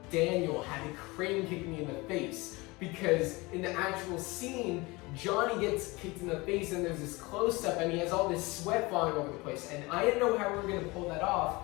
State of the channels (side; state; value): right; quieter; 23.6 dB